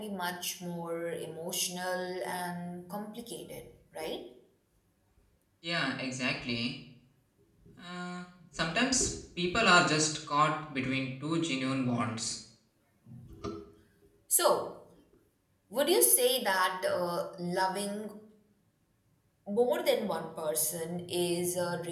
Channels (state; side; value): identical; both; correlation 1.00